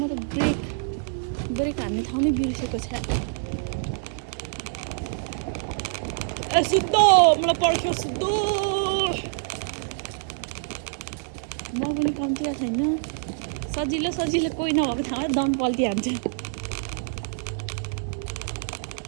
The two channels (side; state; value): left; silent; digital silence